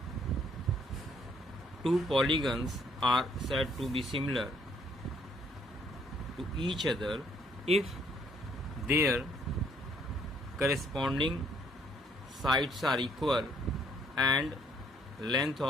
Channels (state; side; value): normal; both; correlation 0.66